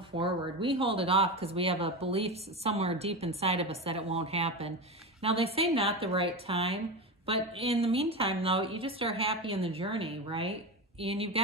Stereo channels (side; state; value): both; normal; correlation 0.20